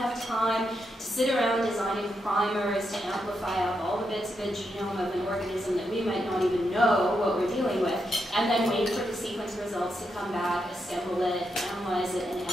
time to sit around designing primers to amplify up all the bits of a genome of an organism that we might not even know what we're dealing with, and then wait for the sequence results to come back, assemble it, analyze it, and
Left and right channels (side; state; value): both; normal; correlation 0.83